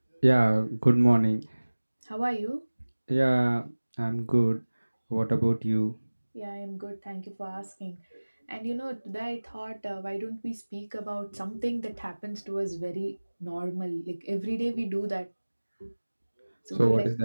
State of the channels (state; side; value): inverted; both; correlation -1.00